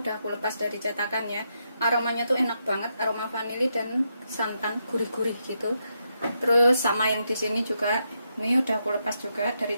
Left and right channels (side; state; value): both; inverted; correlation -0.82